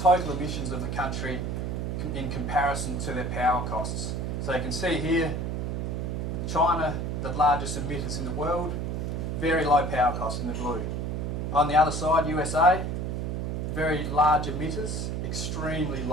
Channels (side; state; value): right; noise; hum, 2 dB below the sound